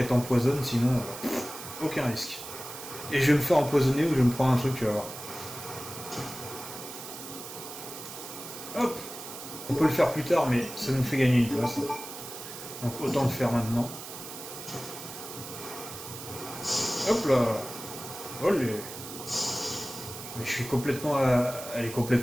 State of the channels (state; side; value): noise; right; hiss, 11 dB below the sound